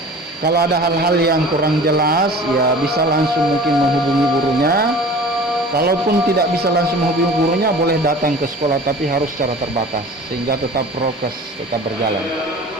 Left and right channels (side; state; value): both; normal; correlation 0.42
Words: Kalau ada hal-hal yang kurang jelas, ya bisa langsung mungkin menghubungi gurunya. Kalaupun tidak bisa langsung menghubungi gurunya, boleh datang ke sekolah, tapi harus secara terbatas sehingga tetap prokes tetap berjalan.